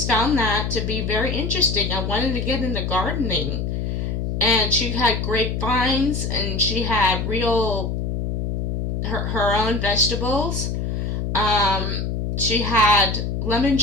found that to be very interesting. I wanted to get into gardening, and she had grapevines, and she had her own vegetables. She had lemon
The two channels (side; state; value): left; noise; hum, 1 dB below the sound